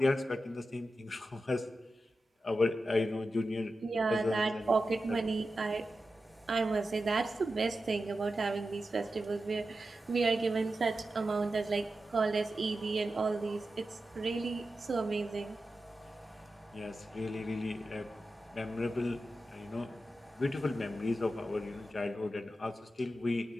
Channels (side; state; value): both; normal; correlation 0.91